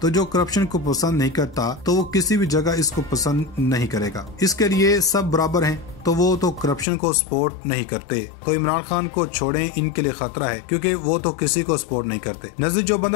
तो जो करप्शन को पसंद नहीं करता तो वो किसी भी जगह इसको पसंद नहीं करेगा। इसके लिए सब बराबर हैं, तो वो तो करप्शन को सपोर्ट नहीं करते। तो इमरान खान को छोड़ें, इनके लिए खतरा है क्योंकि वो तो किसी को सपोर्ट नहीं करते। नजदीक जो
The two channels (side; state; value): right; drops out; at 6.9 s